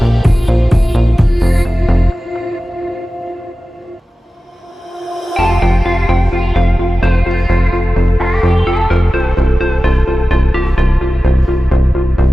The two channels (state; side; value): normal; both; correlation 0.95